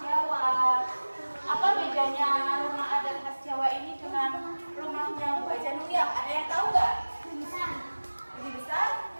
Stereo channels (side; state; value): both; inverted; correlation -1.00